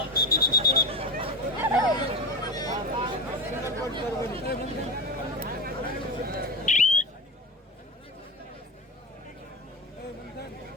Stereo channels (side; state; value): both; normal; correlation 0.23